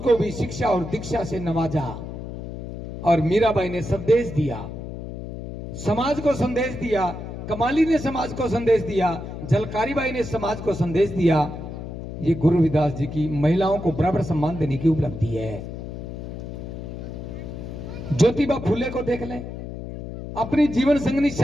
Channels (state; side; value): noise; left; hum, 9 dB below the sound